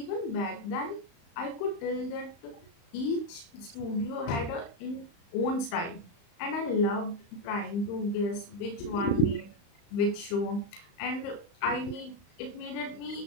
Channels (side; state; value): right; late; 35 ms